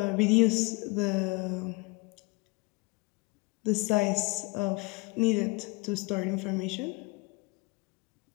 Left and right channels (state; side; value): quieter; right; 26.5 dB